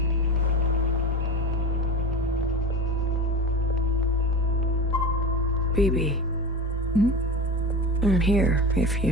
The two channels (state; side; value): normal; both; correlation 0.28